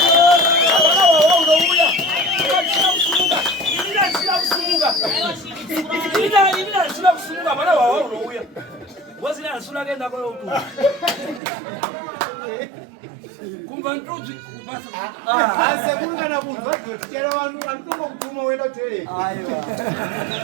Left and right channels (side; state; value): left; drops out; at 11.4 s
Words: kumva ntuzi kupasa Asa kungana kunzwa tichera vanhu anotonga kutuma uenda toilet. Aiwa.